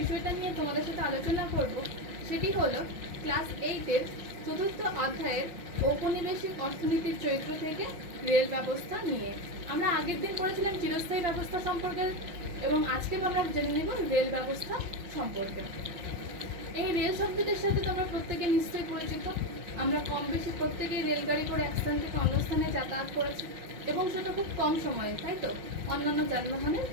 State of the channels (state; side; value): late; left; 5.7 ms